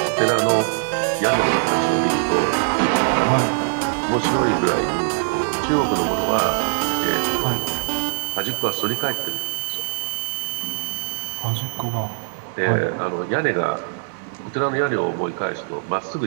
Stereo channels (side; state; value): left; silent; digital silence